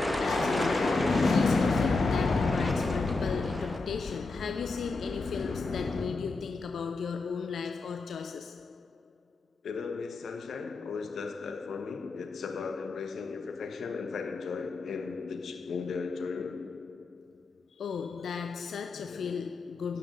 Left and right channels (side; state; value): right; quieter; 3.7 dB